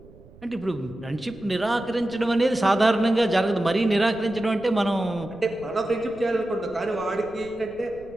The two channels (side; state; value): right; noise; rumble, 22 dB below the sound